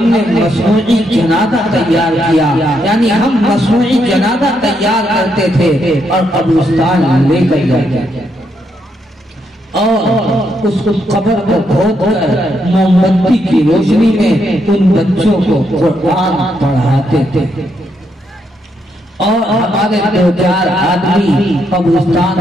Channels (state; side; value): normal; both; correlation 0.78